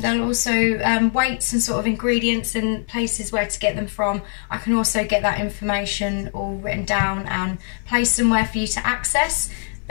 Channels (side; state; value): right; silent; 64 dB below the other